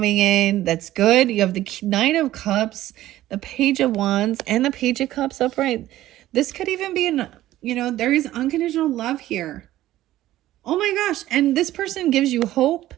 in that's good. You have the Knight of Cups, the Page of Wands, and the Page of Cups upright. This could even be there is unconditional love here. Oh my gosh. And this person gives you hope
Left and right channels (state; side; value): quieter; left; 14.6 dB